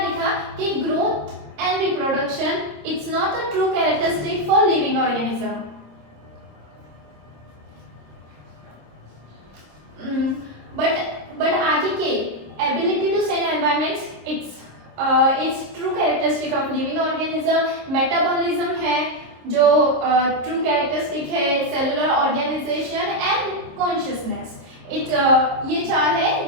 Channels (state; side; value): late; left; 26 ms